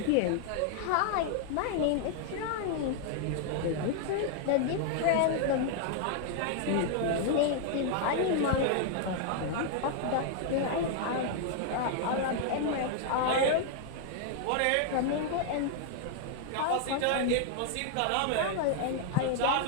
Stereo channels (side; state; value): both; different; correlation 0.00